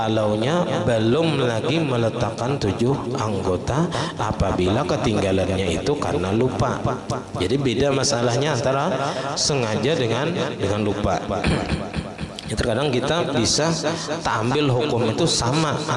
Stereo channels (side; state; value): both; identical; correlation 1.00